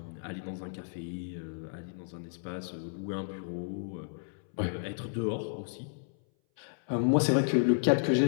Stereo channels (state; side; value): silent; right; 56 dB below the other